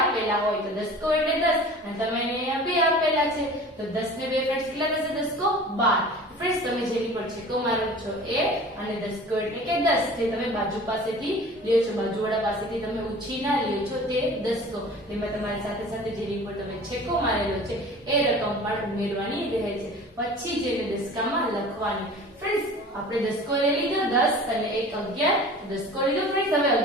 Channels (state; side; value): normal; both; correlation 0.41